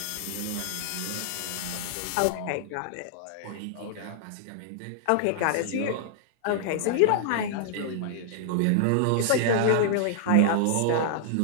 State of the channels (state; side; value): different; both; correlation -0.01